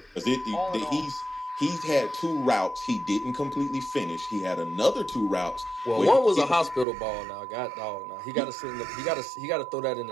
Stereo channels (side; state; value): left; drops out; at 6.9 s